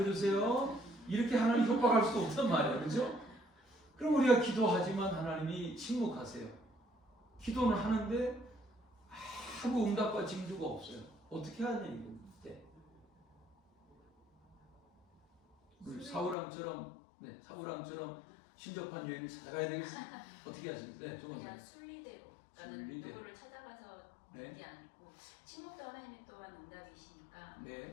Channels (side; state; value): right; drops out; at 16.4 s